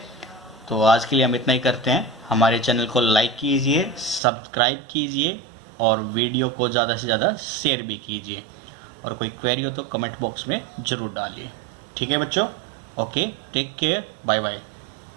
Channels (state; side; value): drops out; left; at 4.2 s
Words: तो आज के लिए हम इतना ही करते हैं। हमारे चैनल को लाइक कीजिए, सब्सक्राइब कीजिए और वीडियो को ज़्यादा से ज़्यादा शेयर भी कीजिए, और कोई क्वेरी हो तो कमेंट बॉक्स में ज़रूर डालिए। ठीक है बच्चों, okay, take care, bye bye.